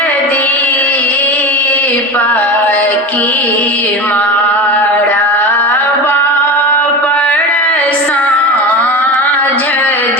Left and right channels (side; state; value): both; normal; correlation 0.26